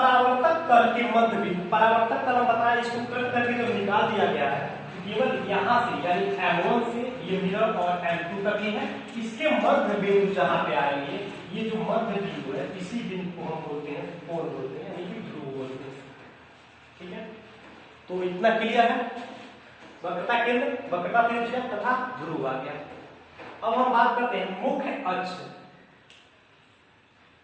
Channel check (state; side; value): identical; both; correlation 1.00